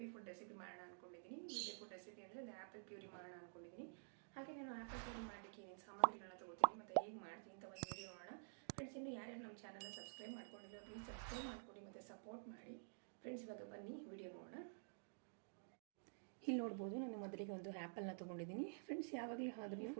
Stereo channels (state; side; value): silent; left; digital silence